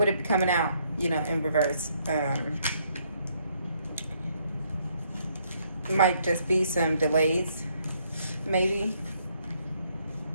it be coming out, in reverse? Might just be some delays, maybe.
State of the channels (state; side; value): inverted; both; correlation -0.70